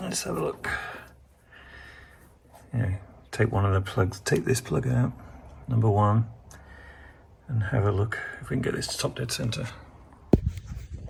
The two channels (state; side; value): identical; both; correlation 1.00